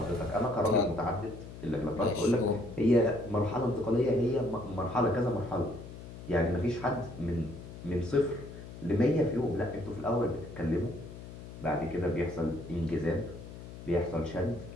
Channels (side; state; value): left; noise; hum, 13 dB below the sound